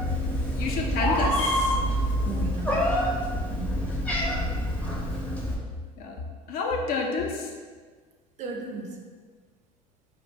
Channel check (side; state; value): both; normal; correlation 0.50